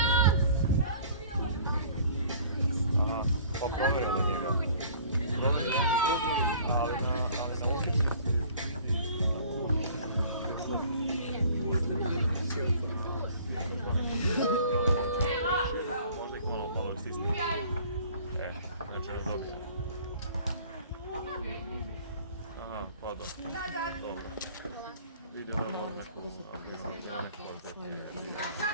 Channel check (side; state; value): both; inverted; correlation -0.51